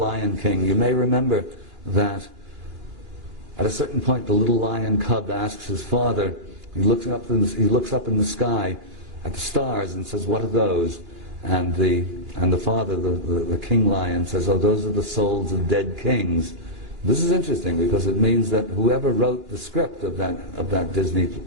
King. You may remember that at a certain point the little lion cub asks his father, he looks up in the sky at the stars and says, "What are those?" And the father, the king lion, says, "Oh, those are the souls of dead kings." This is interesting because it means that whoever wrote the script of that Disney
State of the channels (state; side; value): late; left; 2.9 ms